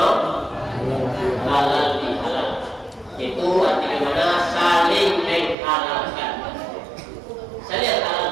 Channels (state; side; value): drops out; left; at 5.6 s